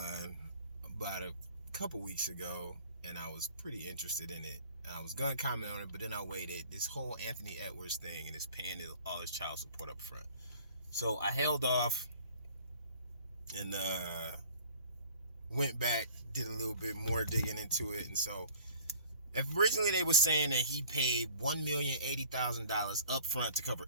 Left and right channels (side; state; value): both; inverted; correlation -0.50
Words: about a couple weeks ago, and I was pretty interested in it. I was gonna comment on it, but then I waited. This whole Anthony Edwards thing and his paying all his child support up front. So I held off and went back, did a little bit more digging into it, and so originally they were saying that he paid $1,080,000 up front to cover